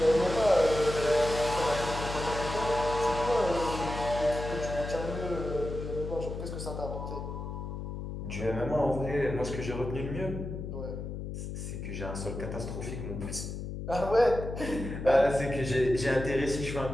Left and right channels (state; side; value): noise; left; hum, 6 dB below the sound